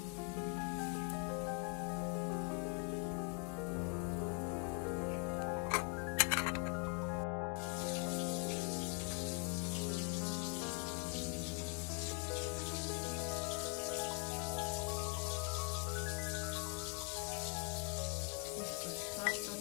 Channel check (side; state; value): right; quieter; 32.7 dB